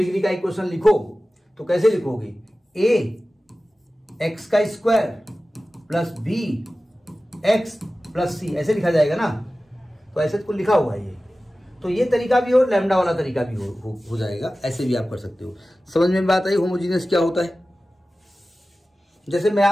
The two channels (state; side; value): normal; both; correlation 0.96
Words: का इक्वेशन लिखो तो कैसे लिखोगे? a x का square plus b x plus c, ऐसे लिखा जाएगा ना। तो ऐसे तो लिखा हुआ है ये, तो ये तरीका भी हो, लैम्डा वाला तरीका भी हो जाएगा, ऐसे भी आप कर सकते हो। समझ में बात आई होमोजीनियस क्या होता है? जैसे मैं